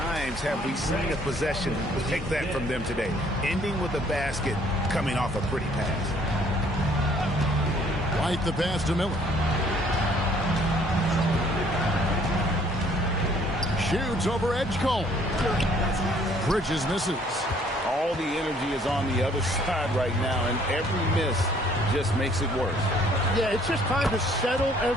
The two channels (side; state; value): both; normal; correlation 0.61